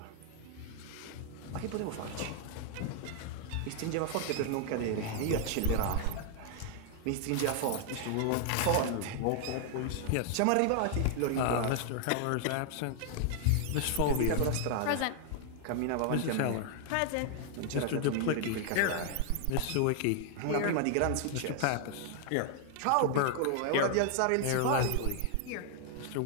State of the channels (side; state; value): both; different; correlation 0.00